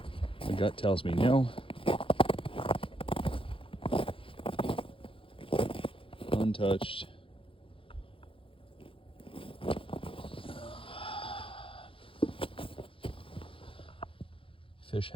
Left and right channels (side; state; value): right; late; 0.26 ms